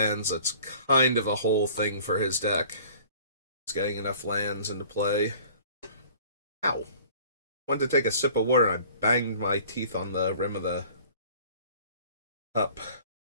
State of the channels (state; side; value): inverted; both; correlation -0.49